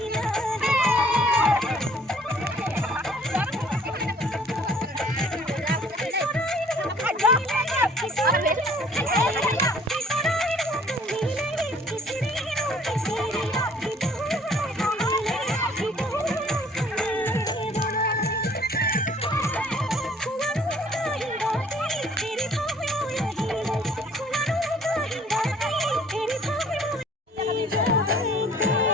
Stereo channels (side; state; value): both; normal; correlation 0.56